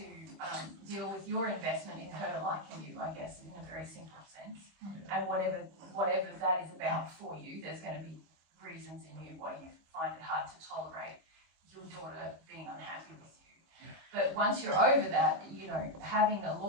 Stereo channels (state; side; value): late; left; 25 ms